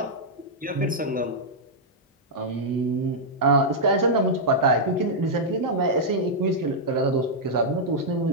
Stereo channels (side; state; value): both; normal; correlation -0.07